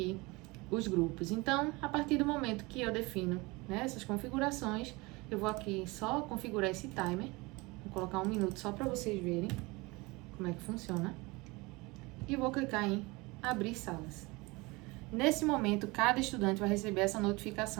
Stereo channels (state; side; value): quieter; left; 24.3 dB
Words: os grupos. Então, a partir do momento que eu defino, né, essas configurações, eu vou aqui só configurar esse timer. Vou colocar 1 minuto só para vocês verem como é que funciona. E vou clicar em abrir salas. Nesse momento, cada estudante vai receber essa